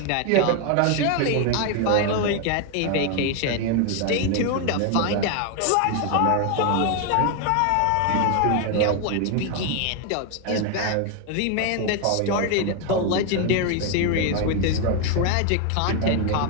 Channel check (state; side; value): different; both; correlation 0.01